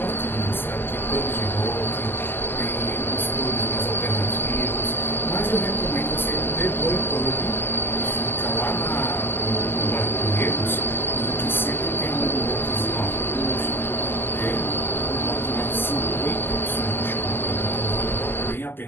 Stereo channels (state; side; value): late; right; 0.10 ms